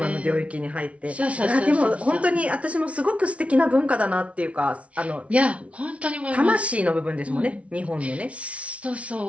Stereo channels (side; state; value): left; late; 0.063 ms